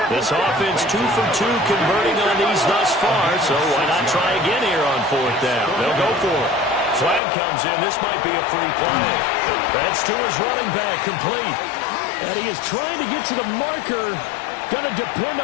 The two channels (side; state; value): right; drops out; at 7.2 s